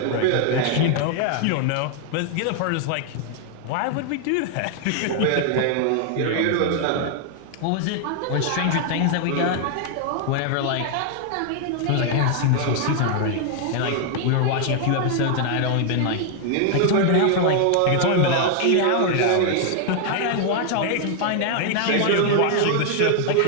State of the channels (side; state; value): both; different; correlation 0.00